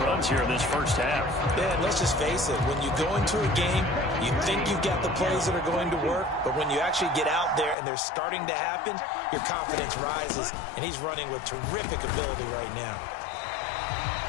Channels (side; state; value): right; drops out; at 7.8 s